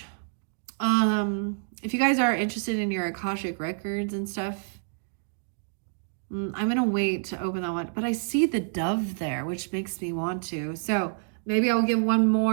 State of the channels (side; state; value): left; silent; digital silence